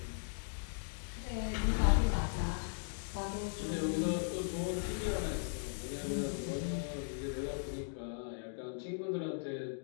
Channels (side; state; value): right; silent; digital silence